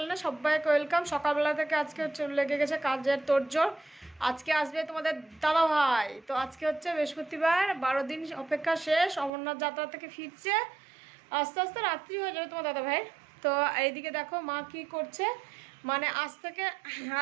সবাইকে ওয়েলকাম। সকালবেলা থেকে আজকে লেগে গেছে কাজের তোড়জোড়। আজকে আসবে তোমাদের দাদা ভাই। তো আজকে হচ্ছে বৃহস্পতিবার, 12 দিন অপেক্ষা শেষ। অমরনাথ যাত্রা থেকে ফিরছে, আস্তে আস্তে রাত্রি হয়ে যাবে তোমার দাদা ভাইয়ের। তো এইদিকে দেখো মা কি করছে, মানে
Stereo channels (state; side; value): drops out; left; at 9.3 s